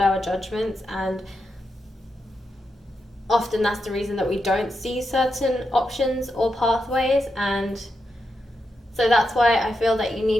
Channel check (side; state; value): both; normal; correlation 0.86